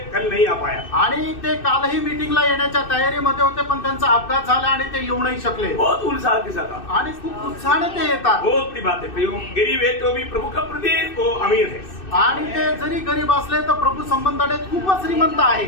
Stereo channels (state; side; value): late; right; 2.6 ms